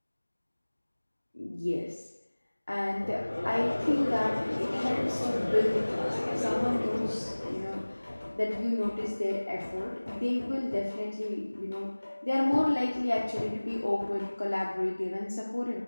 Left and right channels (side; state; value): both; inverted; correlation -1.00